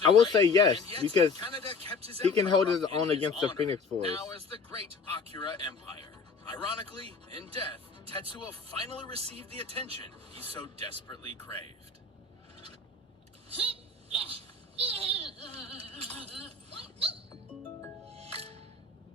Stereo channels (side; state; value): right; quieter; 4.3 dB